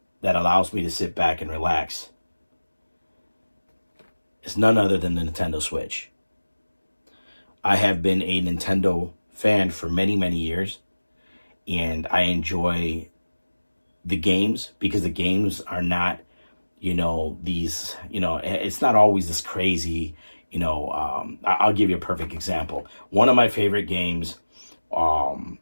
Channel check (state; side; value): inverted; both; correlation -1.00